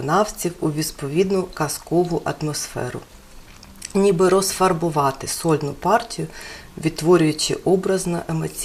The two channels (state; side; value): identical; both; correlation 1.00